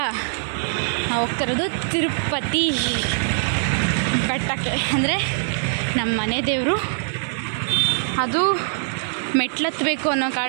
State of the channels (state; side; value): silent; left; 64 dB below the other